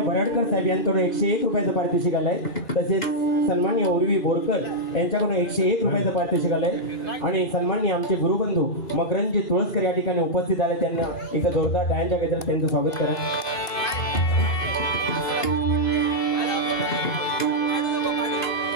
बराडकर साहेब यांच्याकडून 101 रुपयाचं पारितोषिक आलंय। तसेच सन्माननीय उर्वी बोरकर यांच्याकडून 101 रुपयाचं पारितोषिक आलंय आणि सन्माननीय आमचे गुरुबंधू मकरंदजी तुळसकर या ठिकाणी उपस्थित आले। त्यांना एका जोरदार टाळ्यांच्या गजरात त्यांचं स्वागत करा।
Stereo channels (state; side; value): late; right; 2.4 ms